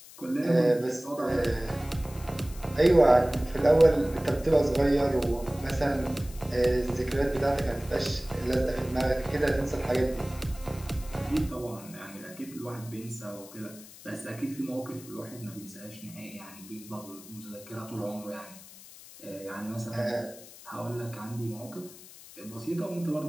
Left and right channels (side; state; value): left; noise; hiss, 18 dB below the sound